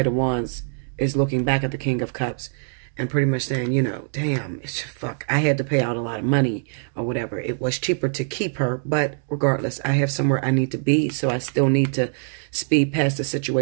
of Wands is looking back at the King of Cups and pretty much saying, damn, fuck, I had to pay out a lot of money or whatever. It was cheaper to keep her, but regardless, I have somewhere I need to be, so I still need to speed past the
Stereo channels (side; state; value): left; silent; digital silence